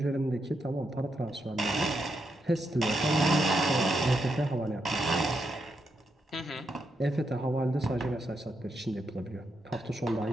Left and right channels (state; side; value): normal; both; correlation 0.82